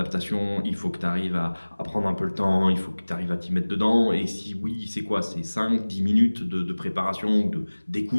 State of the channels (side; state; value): both; inverted; correlation -1.00